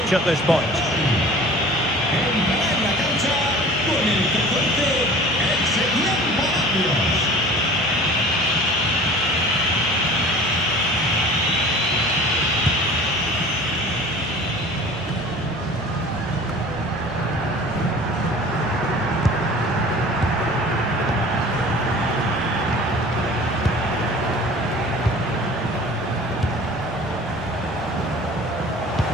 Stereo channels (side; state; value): right; noise; hum, 19 dB below the sound